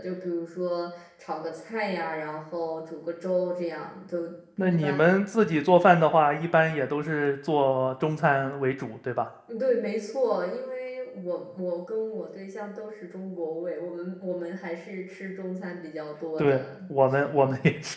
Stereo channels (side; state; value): both; identical; correlation 1.00